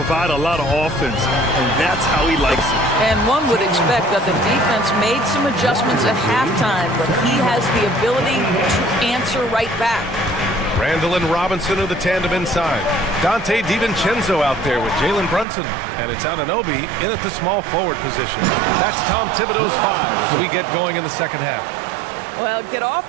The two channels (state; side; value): drops out; left; at 15.5 s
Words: a lot of offense, and that's how he likes it. And one would expect that the defense made some adjustments at halftime, but he has the ability to answer right back. Randall and Robinson are the tandem inside. Dante DiVincenzo out there with Jalen Brunson. And it's Anunoby in at the small forward position. That's Tom Thibodeau's 5 as we get going in the second half. Well, get